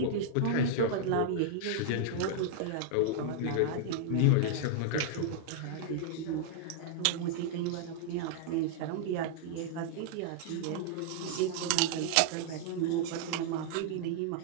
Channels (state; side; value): different; both; correlation -0.01